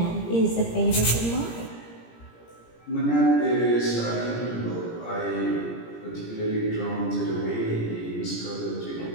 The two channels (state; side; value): late; right; 17 ms